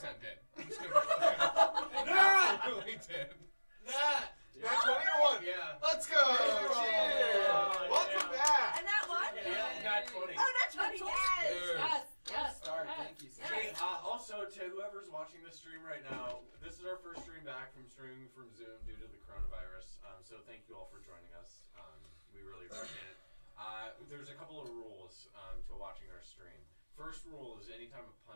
did. I'm just gonna I absolutely did. That. That's 20 or 1? Yeah. Let's go! Cheers! Oh, Welcome yeah. back! And that one? Yeah, got 20. Oh, that's 20. Yes. Dude. Yes. Yes. Start. Yes. Thank you, sir. Hey, also to whoever's watching this stream right now, this is our first stream back from streaming from Zoom due to the coronavirus. So thank you all for joining us. We really appreciate it. There's a couple of rules to watching our stream. First rule is anytime a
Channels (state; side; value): inverted; both; correlation -1.00